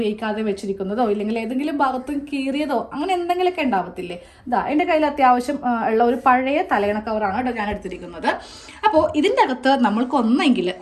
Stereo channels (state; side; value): identical; both; correlation 1.00